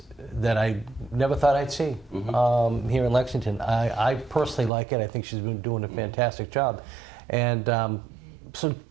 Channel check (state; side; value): drops out; left; at 4.7 s